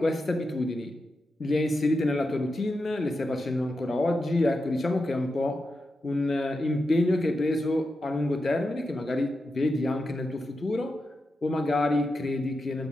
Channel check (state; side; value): normal; both; correlation 0.89